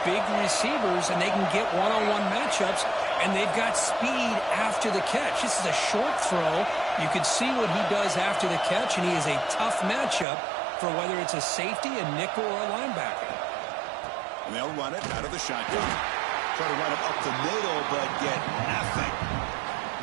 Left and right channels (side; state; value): left; drops out; at 10.2 s